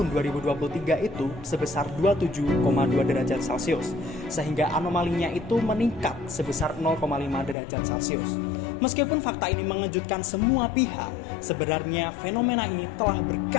2023 itu sebesar 27,2 derajat Celcius, sehingga anomalinya itu meningkat sebesar 0,5 derajat Celcius. Meskipun fakta ini mengejutkan semua pihak, sebenarnya fenomena ini telah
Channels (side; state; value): right; drops out; at 7.6 s